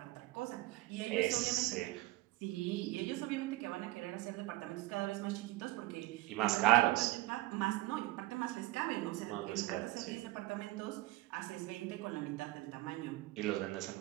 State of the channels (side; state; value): left; quieter; 18.2 dB